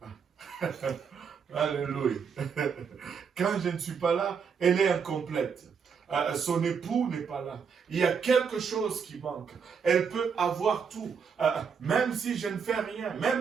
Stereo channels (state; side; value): quieter; left; 6.3 dB